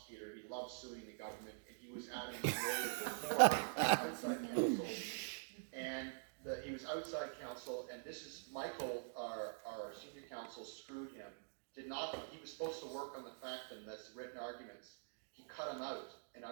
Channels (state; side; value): silent; left; digital silence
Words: He loved suing the government, and he was Adam's lawyer before outside counsel. And he was outside counsel, and this is Michael, our senior counsel, screwed him. He was supposed to work on the fact and that's written arguments. He cut him out. And